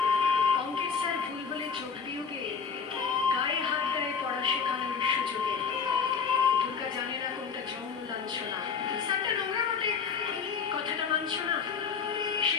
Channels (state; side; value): quieter; right; 6.1 dB